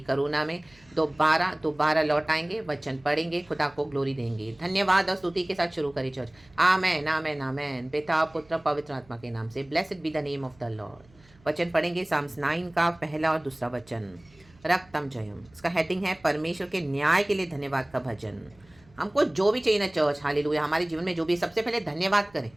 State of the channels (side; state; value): right; noise; hum, 28 dB below the sound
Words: करुणा में दोबारा लौट आएंगे, वचन पढ़ेंगे, खुदा को ग्लोरी देंगे. धन्यवाद और स्तुति के साथ शुरू करें चर्च. आमेन, आमेन, आमेन. पिता, पुत्र, पवित्र आत्मा के नाम से. Blessed be the name of the Lord. वचन पढ़ेंगे साम्स 9 का पहला और दूसरा वचन. रक्तम जयम. इसका हेडिंग है परमेश्वर के न्याय के लिए धन्यवाद का भजन. हमको जो भी चाहिए ना चर्च, हालेलुया, हमारे जीवन में जो भी, सबसे पहले धन्यवाद करें.